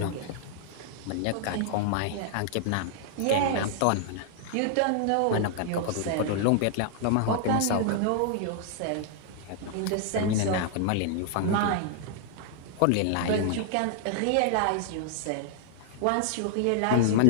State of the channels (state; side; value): different; both; correlation -0.01